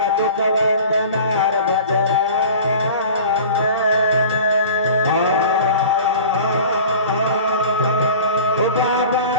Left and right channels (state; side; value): inverted; both; correlation -0.40